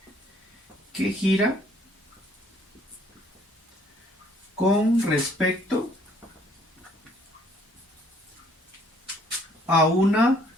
que gira con respecto a una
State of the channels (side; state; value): both; normal; correlation 0.62